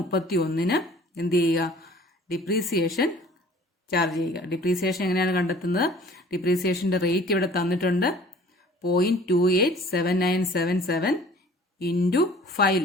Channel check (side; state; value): both; normal; correlation 0.50